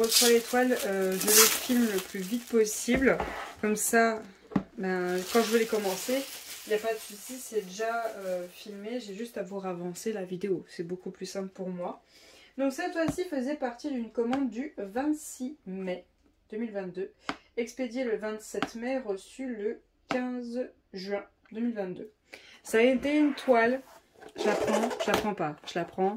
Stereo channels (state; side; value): identical; both; correlation 1.00